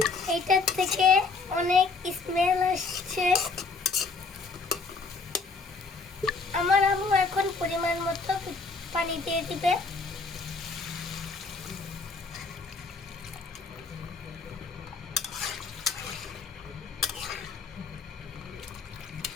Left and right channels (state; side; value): quieter; right; 4.2 dB